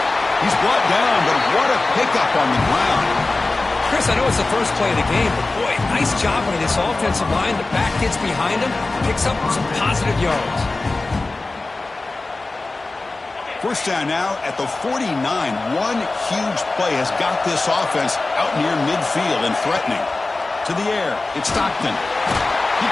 He's brought down, but what a pickup on the ground. Chris, I know it's the first play of the game, but boy, nice job by this offensive line. The back gets behind him, picks up some positive yards. First down now at the 49. One huge play has got this offense out near midfield and threatening. To the air, it's Stockton. He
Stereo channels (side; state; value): right; quieter; 3.3 dB